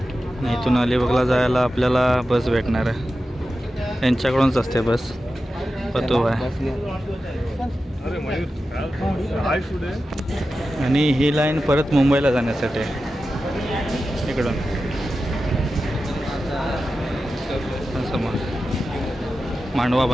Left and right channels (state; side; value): normal; both; correlation 0.92